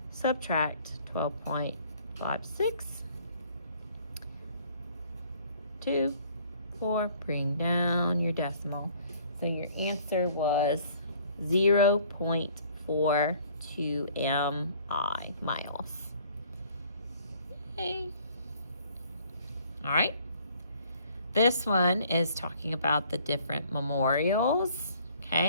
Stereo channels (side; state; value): both; inverted; correlation -0.58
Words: subtract 12.56. 2, 4, bring down your decimal. So your answer was 0.42 mi, miles. Okay. All right. This one is talking about the different memorials.